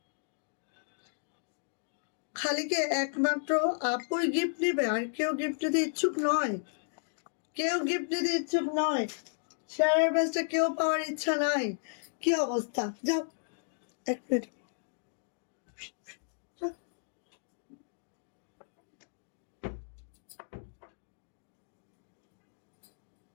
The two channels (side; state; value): right; silent; digital silence